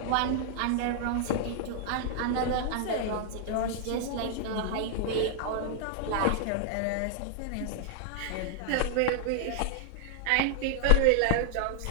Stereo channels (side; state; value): both; different; correlation -0.01